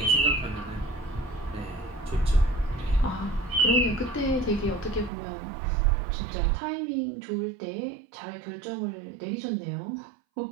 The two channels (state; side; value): drops out; left; at 5.1 s